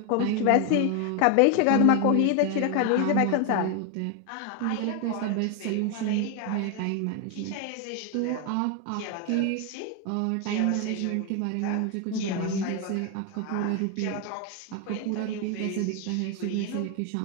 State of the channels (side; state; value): both; different; correlation 0.01